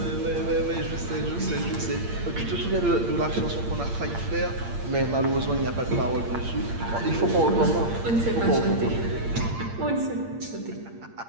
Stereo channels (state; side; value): late; left; 8.7 ms